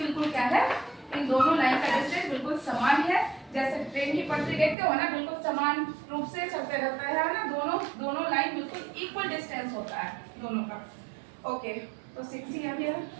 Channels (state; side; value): drops out; left; at 4.8 s